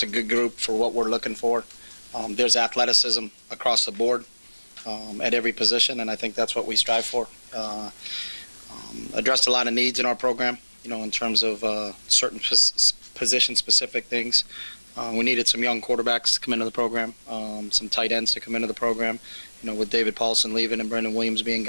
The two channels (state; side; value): inverted; both; correlation -1.00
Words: a good group for what we're looking for. There's athleticism across the board at every position, and I think that's what we strive for. Addressed a lot of needs in our program, in terms of certain position-specific things. We needed some young quarterbacks to come into the program, some tight ends to come into the program, with David Paulson leaving and Brendan Williams being